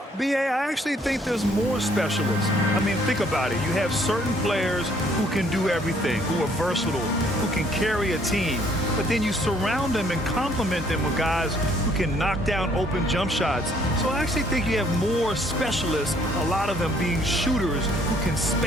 B.A., I actually think there's more specialists. I mean, think about it. You have certain players who can do everything, who are versatile, who can carry a team. But then you surround them and complement them with guys who can knock down open jump shots. So I actually think you have more specialists, a lot of them being shooters who can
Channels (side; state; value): both; normal; correlation 0.64